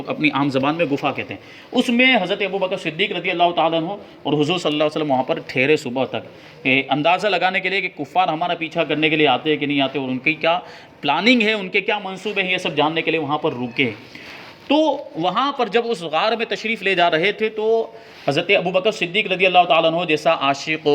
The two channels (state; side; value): identical; both; correlation 1.00